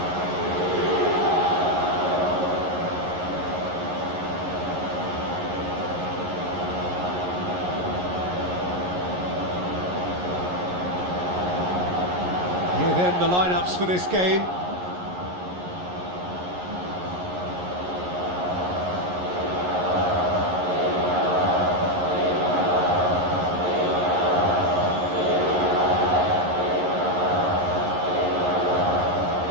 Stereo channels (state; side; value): late; left; 11 ms